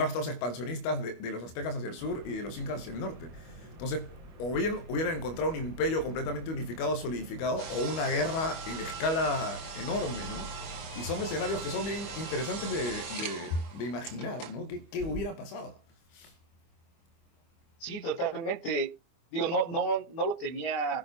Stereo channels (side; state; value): right; late; 25 ms